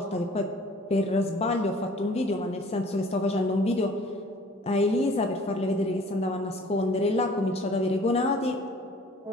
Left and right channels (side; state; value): both; normal; correlation 0.51